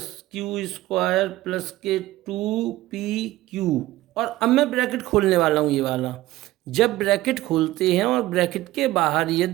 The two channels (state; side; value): quieter; left; 16.6 dB